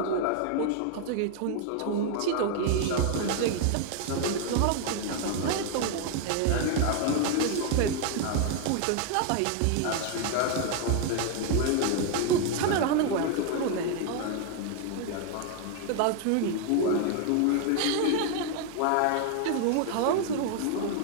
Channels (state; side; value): different; both; correlation 0.00